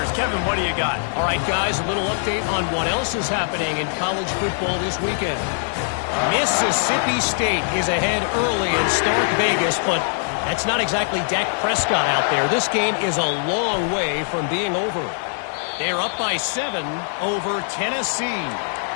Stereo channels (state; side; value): silent; right; digital silence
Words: Kevin, what do you got? All right, guys, a little update on what else is happening in college football this weekend. Mississippi State is ahead early in Stark Vegas, but that's not exactly Dak Prescott out there. This game is a long way from being over. They're up by 7 over Tennessee.